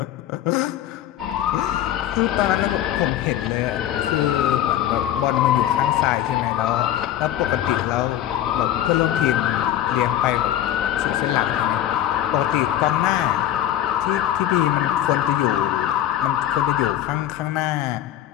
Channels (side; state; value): right; quieter; 12.0 dB